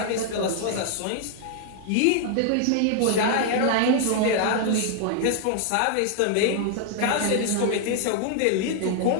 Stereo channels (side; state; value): both; different; correlation 0.00